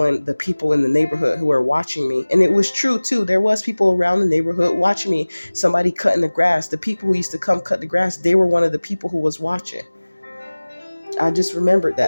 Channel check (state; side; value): inverted; both; correlation -1.00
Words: the people in the neighborhood who were watching me. And it was true too. There was people around the neighborhood watching me. Somebody cutting the grass. The people who used to come cut the grass, they were one of the people who was watching. I just remembered